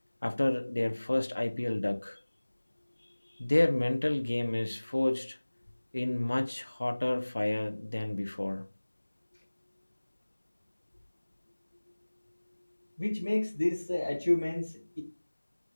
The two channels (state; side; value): inverted; both; correlation -1.00